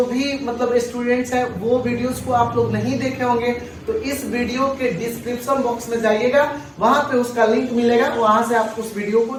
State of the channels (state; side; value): identical; both; correlation 1.00